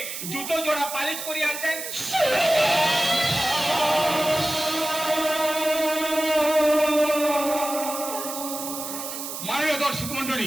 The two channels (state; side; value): noise; right; hiss, 7 dB below the sound